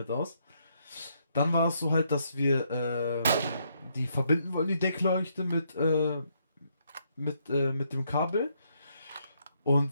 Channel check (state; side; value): inverted; both; correlation -0.74